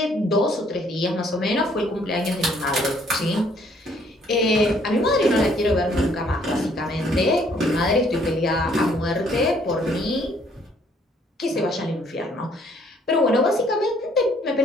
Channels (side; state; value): both; normal; correlation 0.63